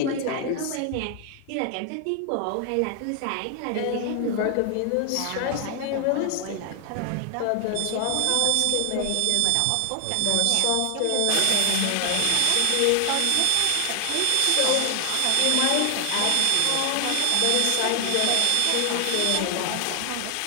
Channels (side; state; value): both; different; correlation 0.00